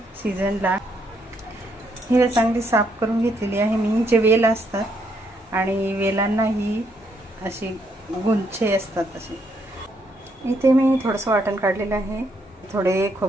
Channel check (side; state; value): both; normal; correlation 0.74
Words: सीझनला. ही चांगली साफ करून घेतलेली आहे मी. जे वेल असतात आणि वेलांना ही अशी गुंछे असतात असे. इथे मी थोडंसं वाटण काढलेलं आहे. थोडे